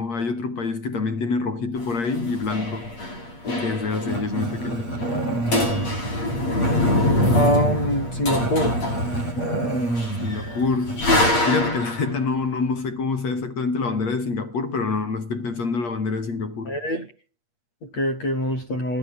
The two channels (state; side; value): late; right; 8.5 ms